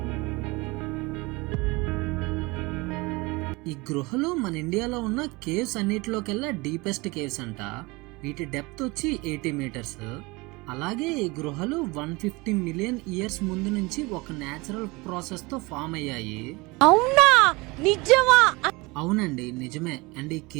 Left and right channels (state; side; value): quieter; left; 24.5 dB